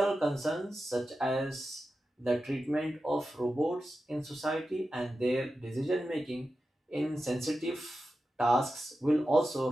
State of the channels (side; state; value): both; normal; correlation 0.92